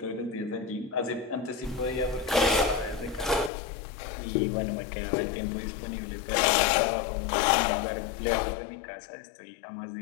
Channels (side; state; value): right; drops out; at 3.5 s